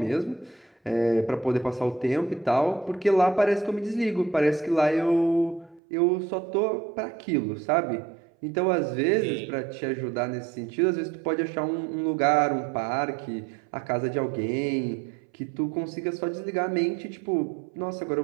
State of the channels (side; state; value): left; drops out; at 5.8 s